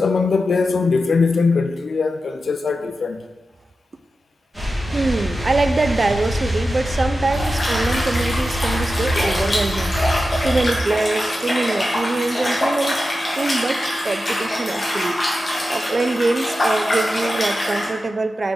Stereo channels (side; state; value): both; normal; correlation 0.91